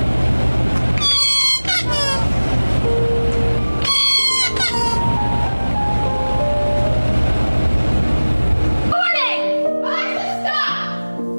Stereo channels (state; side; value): inverted; both; correlation -1.00